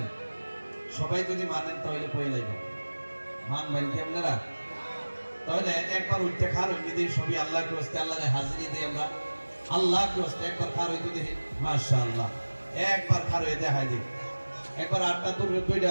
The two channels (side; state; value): both; inverted; correlation -1.00